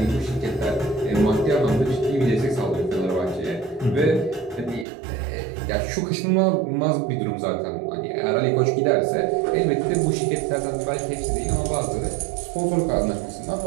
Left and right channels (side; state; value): left; drops out; at 4.9 s